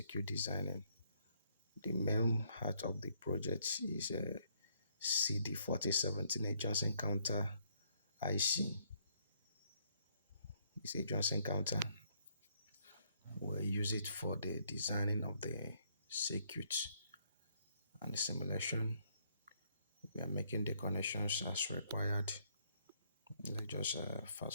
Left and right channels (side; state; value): both; inverted; correlation -0.69